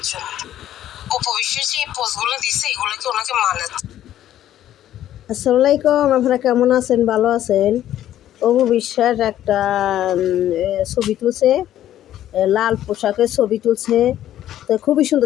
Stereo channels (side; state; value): right; quieter; 12.2 dB